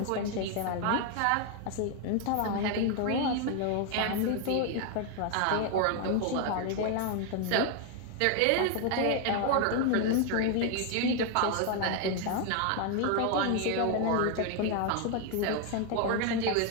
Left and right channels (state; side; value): different; both; correlation 0.00